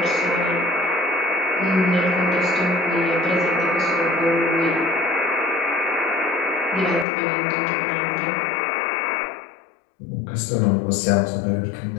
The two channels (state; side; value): drops out; right; at 7.1 s